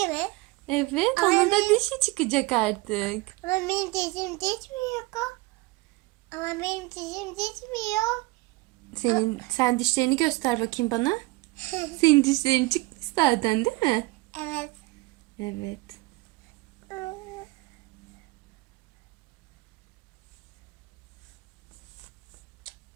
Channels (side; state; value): left; quieter; 22.2 dB